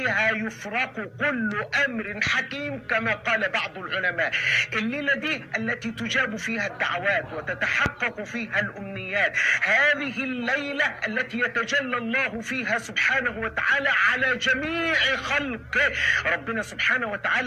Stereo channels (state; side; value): identical; both; correlation 1.00